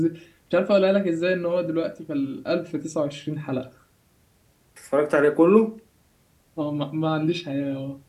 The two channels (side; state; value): both; identical; correlation 1.00